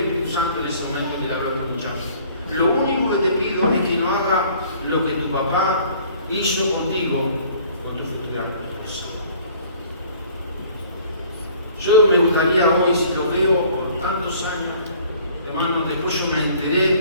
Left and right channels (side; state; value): both; inverted; correlation -0.54